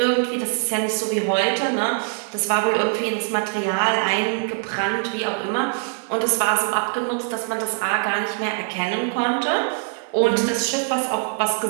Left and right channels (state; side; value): silent; left; 64 dB below the other